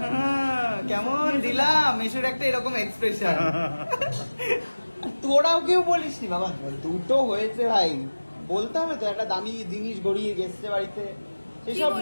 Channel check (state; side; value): inverted; both; correlation -1.00